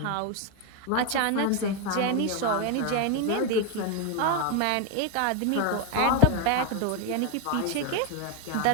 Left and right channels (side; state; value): both; different; correlation 0.01